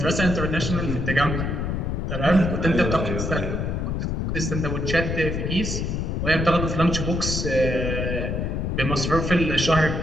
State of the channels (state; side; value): noise; left; rumble, 1 dB below the sound